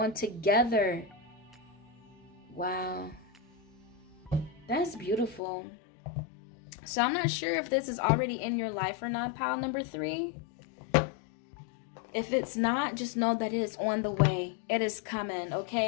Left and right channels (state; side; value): drops out; right; at 5.4 s